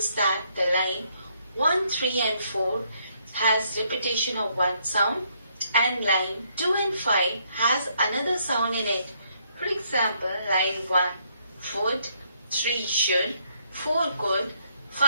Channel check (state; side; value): inverted; both; correlation -0.71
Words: that the line 1, 3 and 4 has repetition of one sound, and line 2 and 5 has another sound in it. For example, line 1, would, 3 should, 4 could,